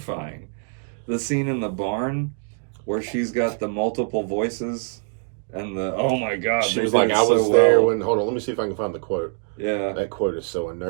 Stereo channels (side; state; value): left; silent; 59 dB below the other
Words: The scene in the barn where she's got the multiple voices and the oh my god, She they was did like, it I so was there well. when. Hold on, let me see if I can find the quote. Yeah, That quote is so